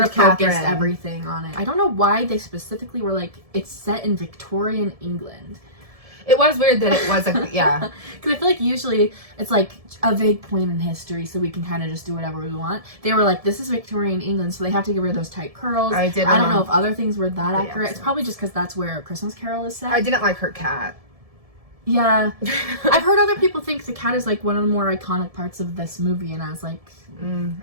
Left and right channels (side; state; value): left; late; 1.7 ms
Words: of focused Catherine. everything on it. I don't know why they specifically were like, it's set in Victorian England. It was weird that it was, like, yeah. Because I feel like usually it's like a vague point in history, so we can kind of just do whatever we want. They were like, this is Victorian England, so they have to get rid of those tight curls. I don't know if other things were that accurate. It's probably just because that's where A Christmas Carol is set. I didn't like her cat. Yeah. I've heard other people think the cat is, like, one of the more iconic parts of this movie, and I was like, I